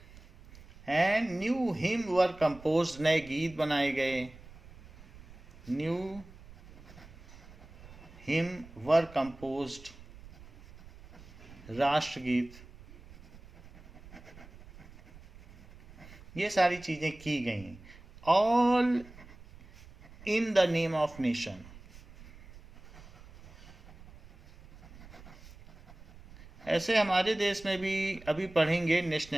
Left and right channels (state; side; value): noise; right; rumble, 20 dB below the sound